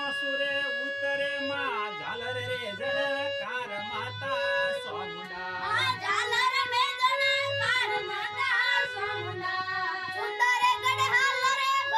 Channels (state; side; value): identical; both; correlation 1.00